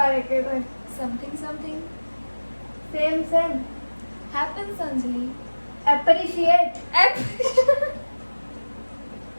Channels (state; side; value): inverted; both; correlation -1.00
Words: एक एक word. Something same same. happens Anjali. Appreciate.